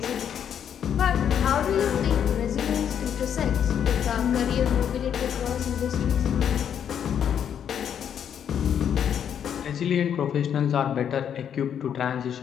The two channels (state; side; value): quieter; right; 8.7 dB